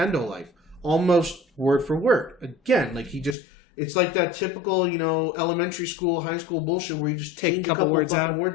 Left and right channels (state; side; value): drops out; right; at 3.4 s